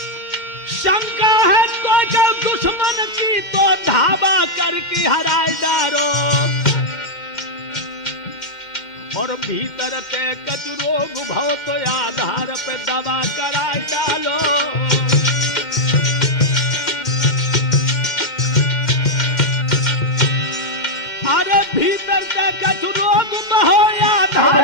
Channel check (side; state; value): right; late; 2.1 ms